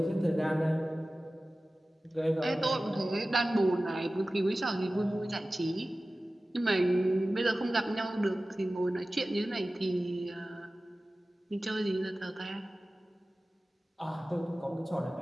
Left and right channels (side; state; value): both; normal; correlation 0.96